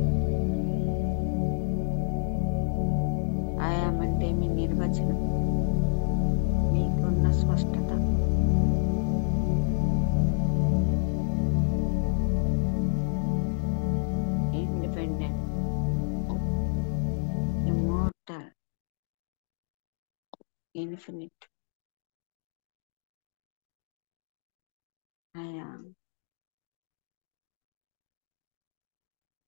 అంటే మీ నిర్వచనం, మీకున్న స్పష్టత. Independent, immortal, infinite. I am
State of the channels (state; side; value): silent; right; 55 dB below the other